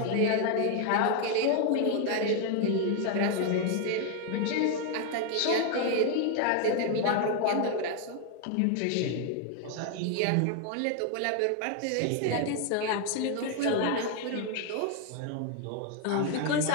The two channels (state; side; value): different; both; correlation 0.01